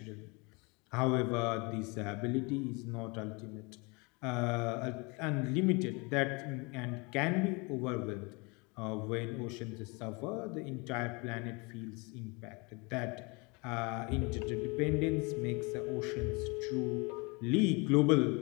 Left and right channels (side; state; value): right; quieter; 28.8 dB